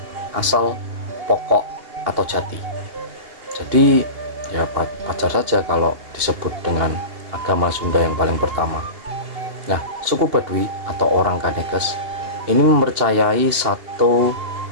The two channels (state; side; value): late; left; 2.8 ms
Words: asal, pokok, atau jati. Jadi ya wajar saja kalau disebut dengan agama Sunda yang paling pertama. Nah, suku Baduy atau orang Kanekes ini mempercayai satu